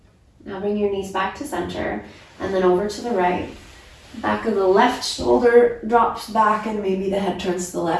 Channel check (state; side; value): identical; both; correlation 1.00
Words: Now bring your knees back to center and then over to the right. Back of the left shoulder drops back and maybe the head turns to the